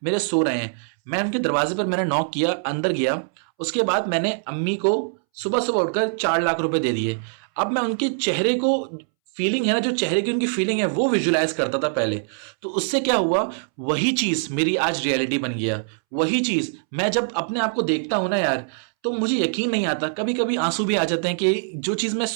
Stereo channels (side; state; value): left; silent; 63 dB below the other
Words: मेरे सो रहे हैं, मैं उनके दरवाजे पर मैंने नॉक किया, अंदर गया, उसके बाद मैंने अम्मी को सुबह सुबह उठकर 4 लाख रुपए दे दिए। अब मैं उनके चेहरे को, फीलिंग है ना, जो चेहरे की उनकी फीलिंग है, वो विजुलाइज करता था पहले। तो उससे क्या हुआ, वही चीज मेरी आज रियलिटी बन गया। वही चीज मैं जब अपने आप को देखता हूं ना यार, तो मुझे यकीन नहीं आता, कभी कभी आंसू भी आ जाते हैं कि जो चीज़ मैं